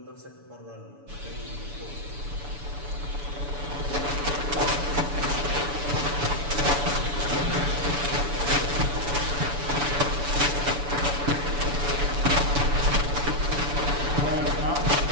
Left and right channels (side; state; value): left; late; 7.0 ms